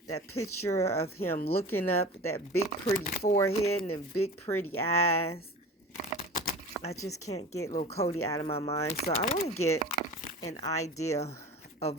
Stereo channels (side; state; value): both; normal; correlation 0.36